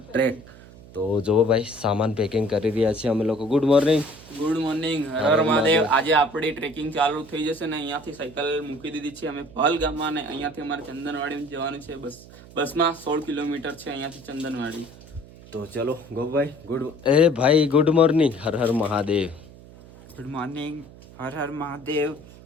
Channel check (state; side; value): noise; right; hum, 20 dB below the sound